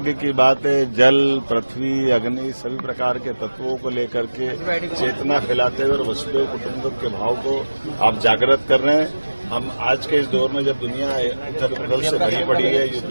की बात है। जल, पृथ्वी, अग्नि सभी प्रकार के तत्वों को लेकर के चेतना फैलाते हुए और वसुदेव कुटुंबकम के भाव को आप जागृत कर रहे हैं। हम आज के इस दौर में जब दुनिया उथल पुथल से भरी पड़ी है,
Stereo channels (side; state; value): both; inverted; correlation -1.00